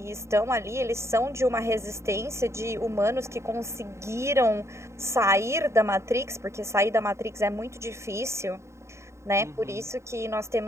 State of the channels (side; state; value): left; late; 0.14 ms